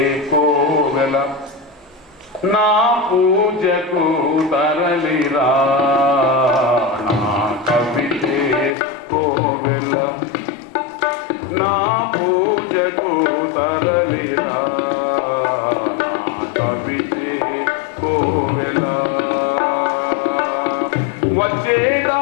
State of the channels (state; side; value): drops out; right; at 8.8 s